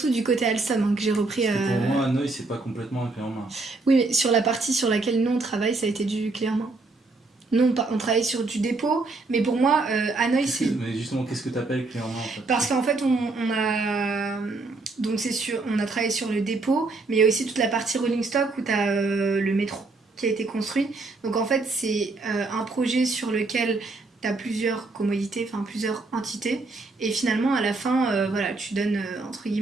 du côté Alstom hein, que j'ai repris. Parce que pour moi Hanoï c'est pas complètement un clé en main. Oui, mais sur la partie sur laquelle nous on travaille ça a été du clé en main. Nous, on travaille sur du dépôt, mais pour moi, Hanoï, c'est... Mais justement, qu'est-ce que tu appelles clé en main en fait? Parce qu'en fait, on a... Donc, on a travaillé sur le dépôt, mais il y a aussi toute la partie rolling stock où tu as le métro qui a été construit. Donc, en fait, c'est un projet sur lequel tu as plusieurs commodités, enfin plusieurs entités. Et finalement, à la fin, voilà, tu donnes, entre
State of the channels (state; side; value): quieter; left; 3.5 dB